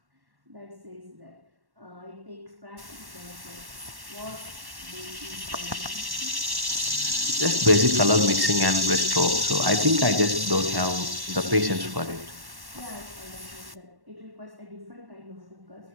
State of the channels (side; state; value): left; late; 1.1 ms